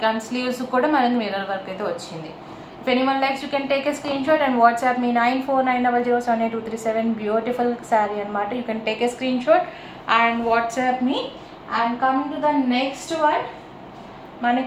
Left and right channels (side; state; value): both; identical; correlation 1.00